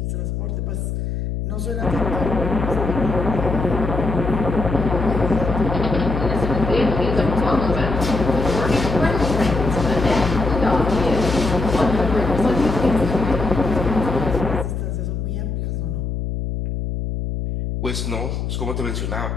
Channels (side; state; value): left; noise; hum, 3 dB below the sound